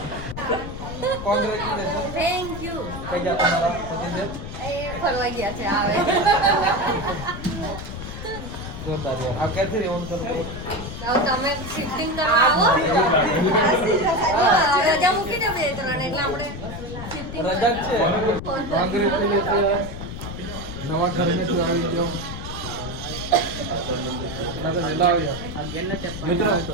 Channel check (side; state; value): left; noise; rumble, 9 dB below the sound